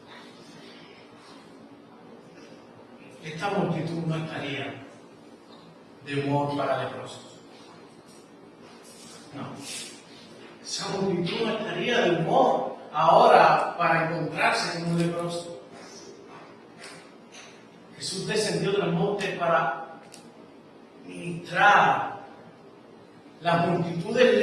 Esta multitud no estaría de humor para leprosos. No. Esa multitud no estaría de humor ahora para encontrarse con un leproso. Jesús descendió del monte para ministrar. Las multitudes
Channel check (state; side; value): identical; both; correlation 1.00